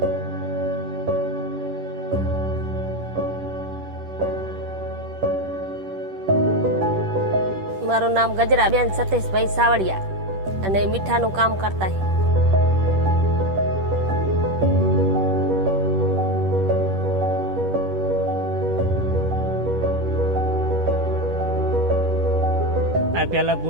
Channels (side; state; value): left; late; 10 ms